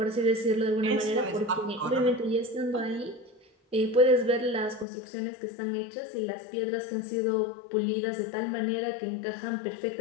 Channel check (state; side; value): drops out; right; at 4.9 s